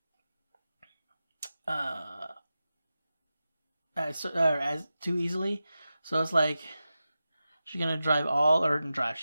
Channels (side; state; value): both; inverted; correlation -0.93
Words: As too easily. So it's like, She's gonna